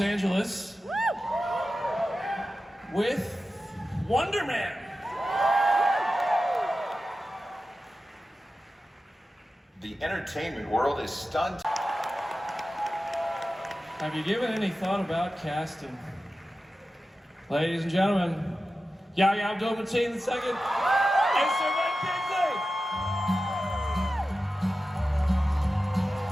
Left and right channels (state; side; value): normal; both; correlation 0.93